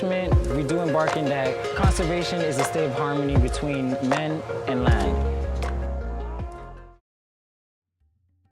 we do embarking that conservation is a state of harmony between men and land.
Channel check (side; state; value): both; identical; correlation 1.00